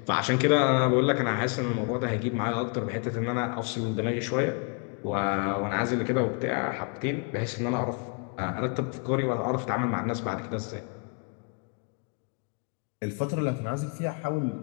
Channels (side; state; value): right; quieter; 36.8 dB